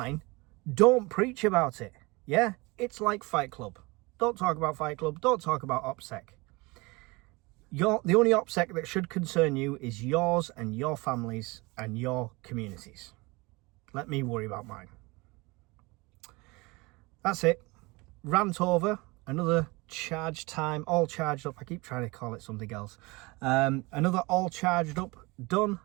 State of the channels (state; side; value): quieter; left; 24.8 dB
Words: don't preach about it. Yeah? It's like Fight Club. Don't talk about Fight Club. Don't talk about OPSEC. The only OPSEC that should concern you is yours and your families and your communities. Let me worry about mine. That's it. Rant over. Another charge time. All charged up. I keep trying to call it something else. Another all charged up. Done.